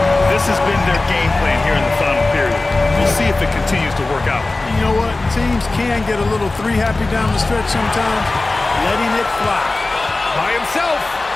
This has been their game plan here in the final period. We'll see if it continues to work out. You know what? Teams can get a little three-happy down the stretch sometimes. Letting it fly. By himself.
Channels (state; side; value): quieter; right; 3.2 dB